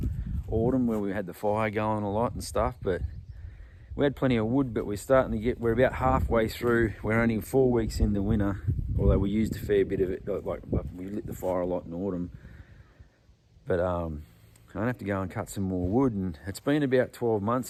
autumn where we had the fire going a lot and stuff, but we had plenty of wood, but we're about halfway through. We're only 4 weeks in the winter, although we used a fair bit of it, like we lit the fire a lot in autumn. But I'm gonna have to go and cut some more wood, and it's been about 12 months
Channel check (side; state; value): both; identical; correlation 1.00